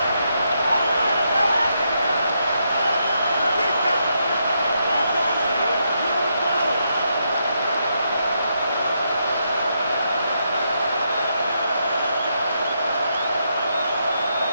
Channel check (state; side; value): inverted; both; correlation -0.79